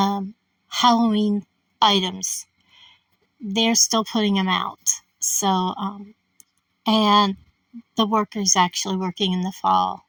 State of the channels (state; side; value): identical; both; correlation 1.00